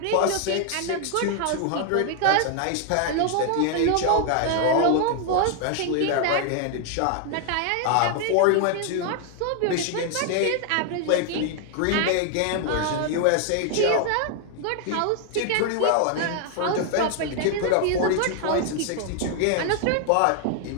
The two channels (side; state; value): both; different; correlation 0.00